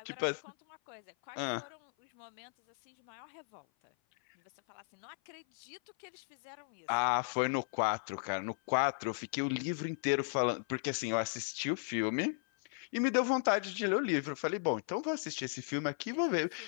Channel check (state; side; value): silent; right; 54 dB below the other